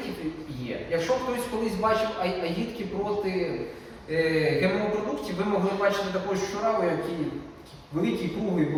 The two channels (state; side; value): identical; both; correlation 1.00